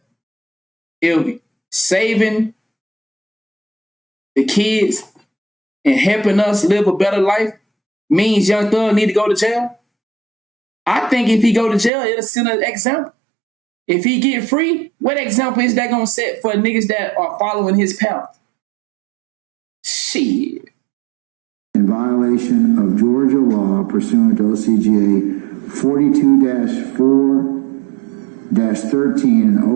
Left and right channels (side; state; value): left; drops out; at 11.9 s